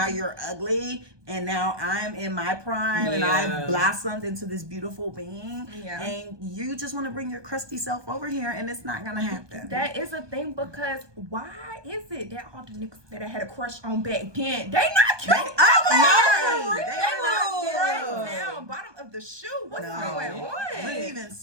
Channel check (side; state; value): left; late; 1.2 ms